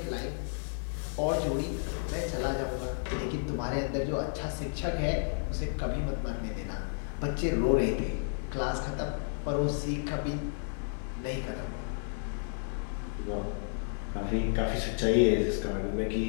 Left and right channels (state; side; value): silent; right; 55 dB below the other